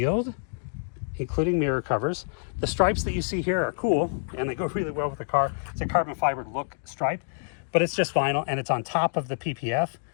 including mirror covers. The stripes that you see here are cool and they go really well with the car. It's a carbon fiber look stripe, but it's just vinyl and it's on top of the PPF.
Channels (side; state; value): right; silent; digital silence